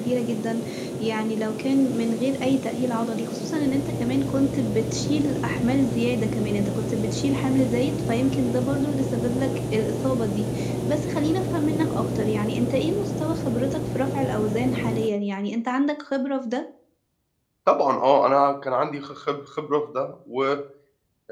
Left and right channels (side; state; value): both; identical; correlation 1.00